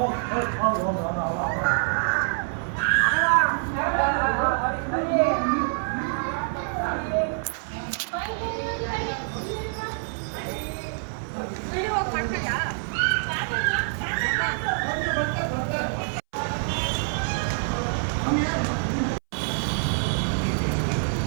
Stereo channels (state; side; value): silent; left; 61 dB below the other